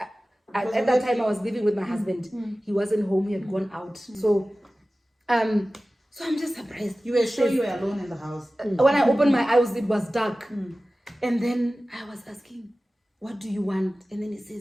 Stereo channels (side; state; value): both; normal; correlation 0.96